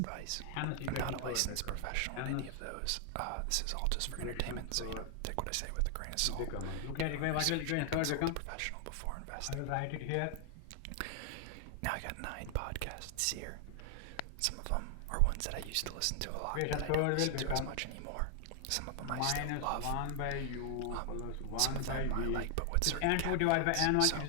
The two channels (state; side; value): different; both; correlation 0.00